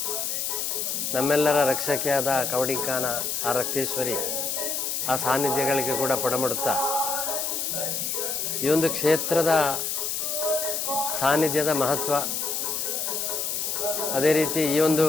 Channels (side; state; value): left; noise; hiss, 1 dB below the sound